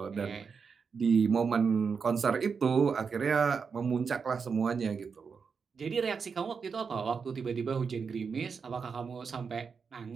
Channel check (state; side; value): quieter; left; 5.7 dB